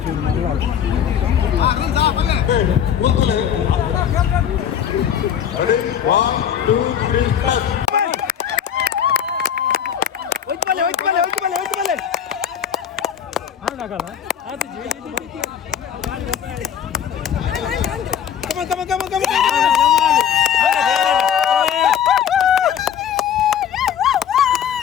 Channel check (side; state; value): right; quieter; 8.9 dB